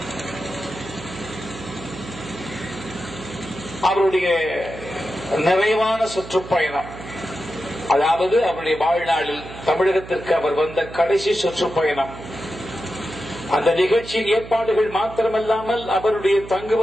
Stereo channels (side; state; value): right; noise; hum, 14 dB below the sound